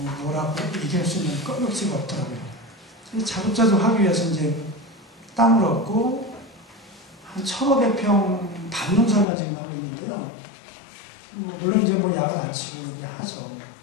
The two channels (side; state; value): right; drops out; at 9.2 s